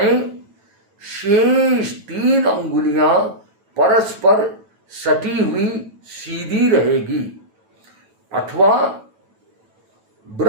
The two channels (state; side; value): late; left; 9.1 ms